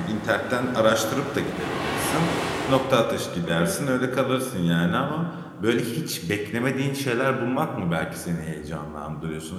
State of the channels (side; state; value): both; identical; correlation 1.00